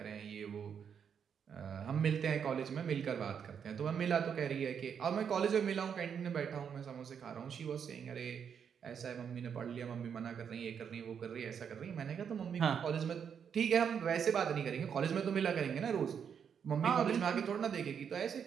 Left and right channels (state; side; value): quieter; left; 7.5 dB